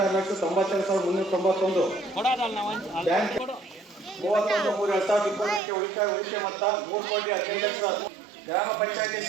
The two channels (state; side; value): drops out; left; at 5.6 s